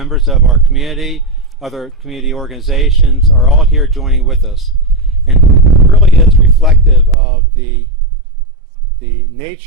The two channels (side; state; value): left; drops out; at 7.2 s